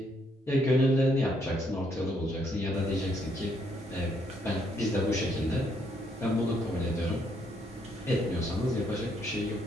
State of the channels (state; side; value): normal; both; correlation 0.72